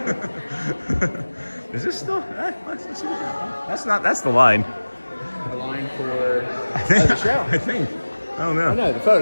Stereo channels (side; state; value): both; inverted; correlation -1.00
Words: Is this still? Let's see what that. That's the line. The line for the show. I think. Oh no. Oh no, the